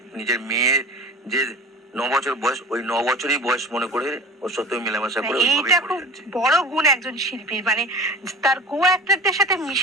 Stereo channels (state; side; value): normal; both; correlation 0.35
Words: নিজের মেয়ের যে 9 বছর বয়স, ওই 9 বছরই বয়স মনে করে ওর সাথে মেলামেশা করে ওইভাবেই এইটা করে খুব যাচ্ছি। বড় গুণ একজন শিল্পীর, মানে তার কো অ্যাক্টরদের সাথে